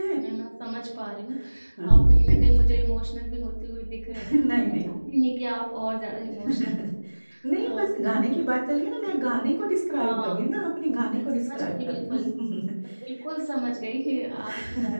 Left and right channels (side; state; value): both; inverted; correlation -1.00